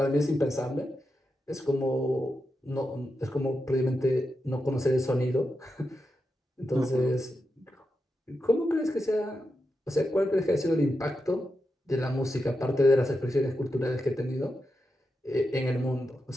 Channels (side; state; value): both; normal; correlation 0.88